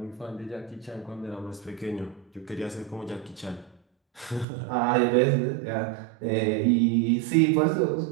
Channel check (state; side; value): drops out; left; at 4.5 s